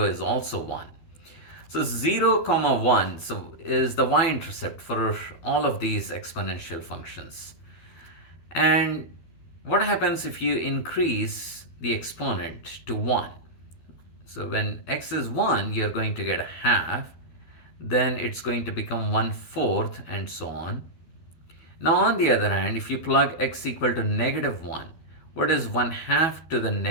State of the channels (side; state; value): right; late; 12 ms